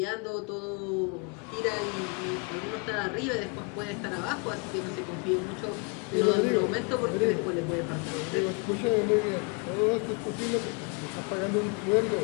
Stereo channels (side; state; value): right; quieter; 33.5 dB